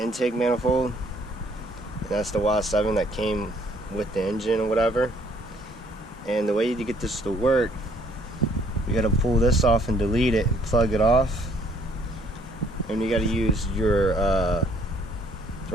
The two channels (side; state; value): both; normal; correlation 0.63